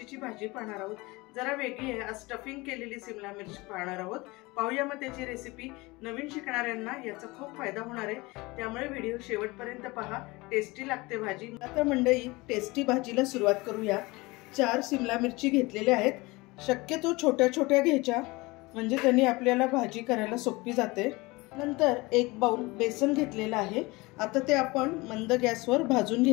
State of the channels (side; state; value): right; quieter; 23.2 dB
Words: भाजी पाहणार आहोत। जरा वेगळी आहे, आज स्टफिंग केलेली सिमला मिरची पाहणार आहोत। पाहूया मग त्याची रेसिपी। नवीन शिकणाऱ्यांना याचा खूप फायदा होणार आहे, त्यामुळे व्हिडिओ शेवटपर्यंत पहा। टेस्टी लागते भाजी। आता मंडळी टेस्टी भाजीला सुरुवात करूया। 4 सिमला मिरची घेतलेल्या आहेत। शक्यतो छोट्या छोट्या घ्यायच्या, म्हणजे त्यांनी आपल्याला भाजी करायला सोपी जाते। नंतर 1 बाउल बेसन घेतलेला आहे। आता ते आपण मंद गॅसवर भाजून